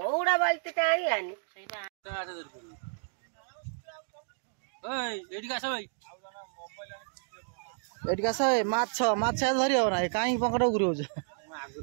बाल्टी आनी माछ माछ धरी हो ना कहीं पंकट घूर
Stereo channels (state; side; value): silent; left; digital silence